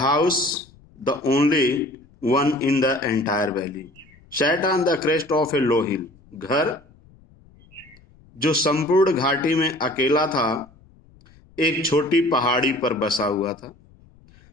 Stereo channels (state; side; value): noise; left; rumble, 28 dB below the sound